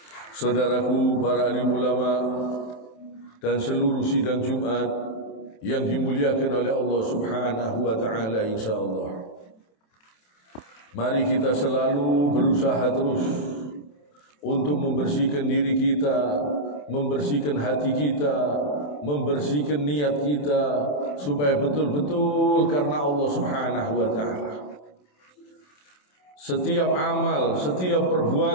Saudaraku para alim ulama dan seluruh sidang Jumat yang dimuliakan oleh Allah Subhanahu wa taala, insyaallah. Mari kita selalu berusaha terus untuk membersihkan diri kita, membersihkan hati kita, membersihkan niat kita supaya betul-betul karena Allah Subhanahu wa taala. Setiap amal, setiap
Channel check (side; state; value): right; late; 27 ms